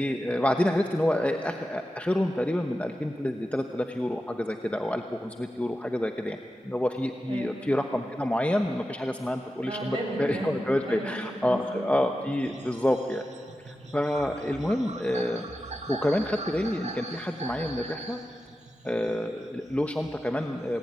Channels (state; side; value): normal; both; correlation 0.91